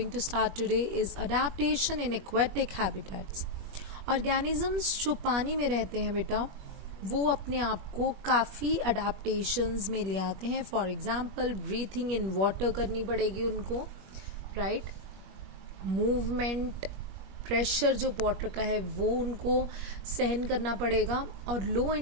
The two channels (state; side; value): late; left; 21 ms